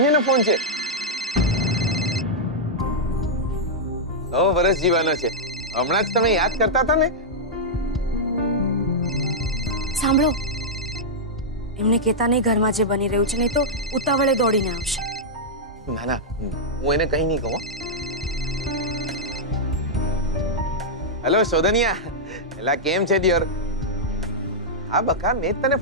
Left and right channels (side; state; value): both; normal; correlation -0.08